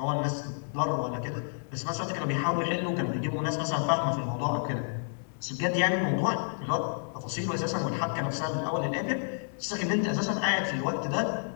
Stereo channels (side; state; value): right; silent; 58 dB below the other